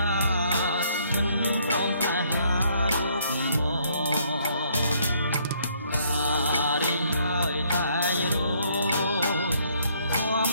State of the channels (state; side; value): inverted; both; correlation -0.67